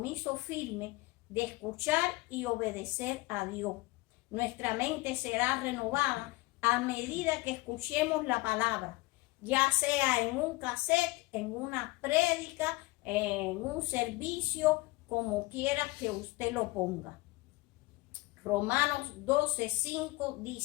firme de escuchar y obedecer a Dios. Nuestra mente será renovada a medida que escuchemos la palabra, ya sea en un cassette, en una prédica, en un servicio, como quiera que usted lo ponga. Romanos 12:5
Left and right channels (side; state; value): right; quieter; 22.0 dB